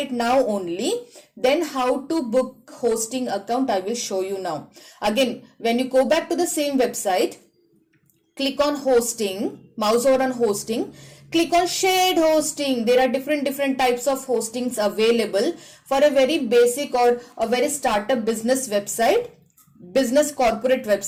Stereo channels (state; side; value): identical; both; correlation 1.00